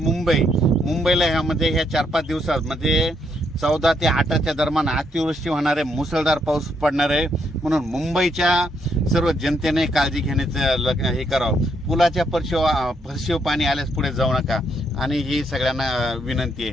ह्यामध्ये ह्या 4-5 दिवसात म्हणजे 14 ते 8च्या दरम्यान अतिवृष्टी होणार आहे, मुसळधार पाऊस पडणार आहे म्हणून मुंबईच्या सर्व जनतेने काळजी घेण्याचं हे करावं. पुलाच्या फरशीव पाणी आल्यास पुढे जाऊ नका आणि ही सगळ्यांना विनंती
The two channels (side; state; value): both; normal; correlation 0.75